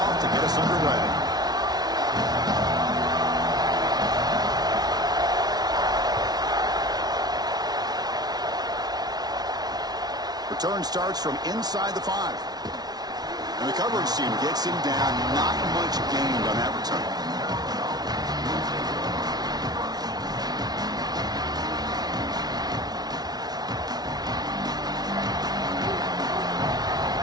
to get us underway. Return starts from inside the 5. And the coverage team gets him down. Not much gained on that return.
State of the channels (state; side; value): late; left; 0.19 ms